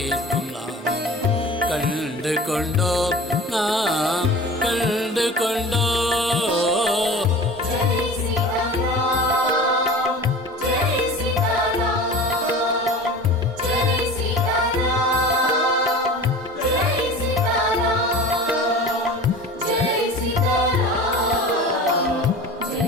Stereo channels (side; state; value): both; normal; correlation 0.37